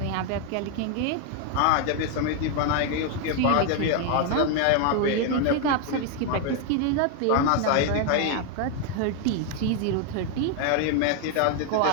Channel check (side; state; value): both; different; correlation 0.01